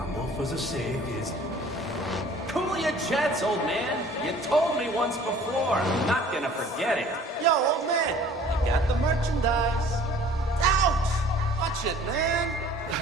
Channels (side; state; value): both; normal; correlation 0.51